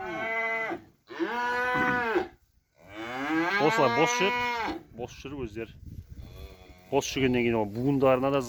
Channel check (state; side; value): identical; both; correlation 1.00